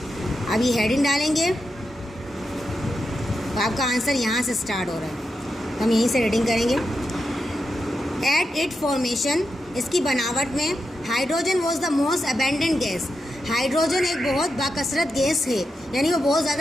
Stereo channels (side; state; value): both; normal; correlation 0.87